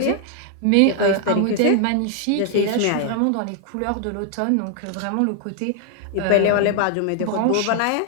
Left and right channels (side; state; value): both; different; correlation 0.00